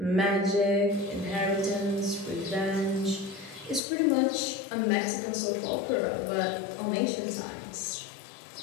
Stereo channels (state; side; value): drops out; right; at 3.8 s